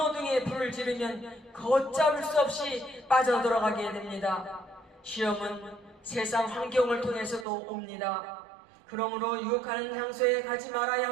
등의 불을 지르면 걷잡을 수 없이 빠져들어가게 됩니다. 시험은 세상 환경을 통해서도 옵니다. 그러므로 유혹하는 장소에 가지 말아야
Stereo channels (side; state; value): left; drops out; at 7.5 s